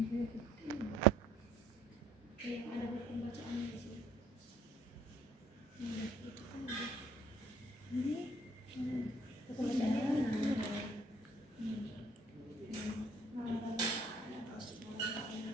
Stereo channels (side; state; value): both; normal; correlation 0.60